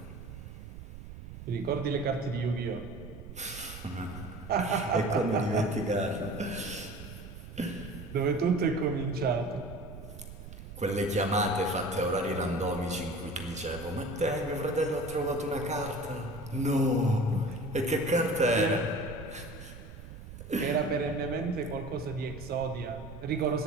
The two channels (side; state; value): right; noise; rumble, 13 dB below the sound